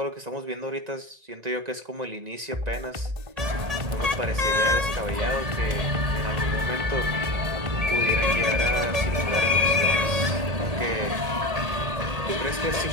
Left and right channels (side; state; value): left; late; 1.8 ms